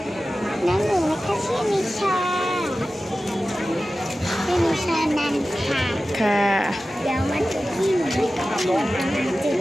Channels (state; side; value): normal; both; correlation 0.95